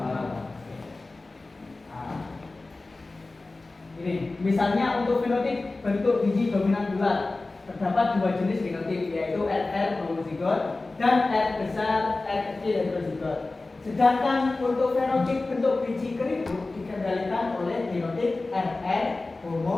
Ini misalnya untuk fenotip bentuk biji dominan bulat, terdapat dua jenis genotip, yaitu RR homozigot dan R besar R kecil heterozigot. Sedangkan untuk fenotip bentuk biji keriput dikendalikan oleh genotip RR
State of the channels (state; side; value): quieter; right; 3.3 dB